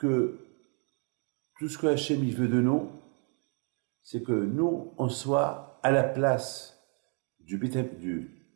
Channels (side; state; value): left; quieter; 37.4 dB